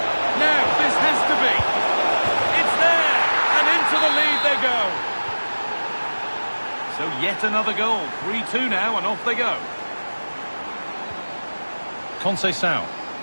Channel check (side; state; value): both; inverted; correlation -1.00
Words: Now, this has to be. It's there! And into the lead they go. So yet another goal. 3-2 now, and off they go. Conceição.